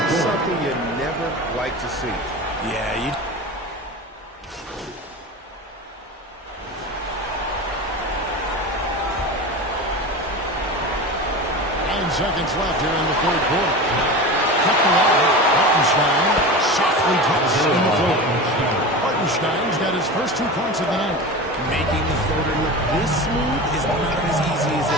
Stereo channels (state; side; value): normal; both; correlation 0.29